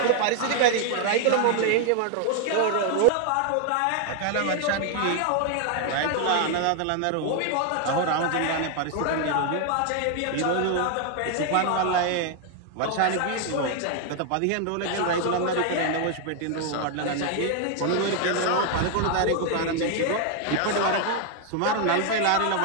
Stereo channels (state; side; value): different; both; correlation 0.00